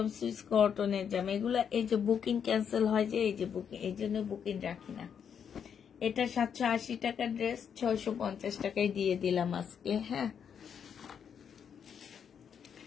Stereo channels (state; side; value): quieter; right; 7.7 dB